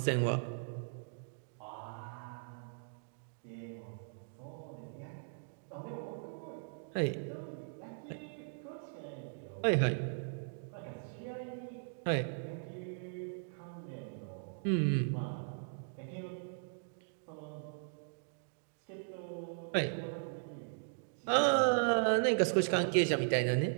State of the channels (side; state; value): left; silent; digital silence